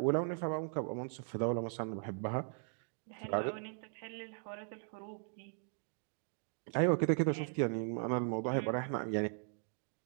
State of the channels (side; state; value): left; silent; 52 dB below the other